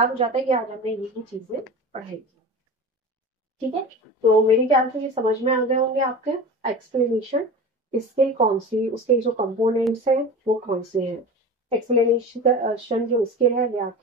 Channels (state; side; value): normal; both; correlation 0.32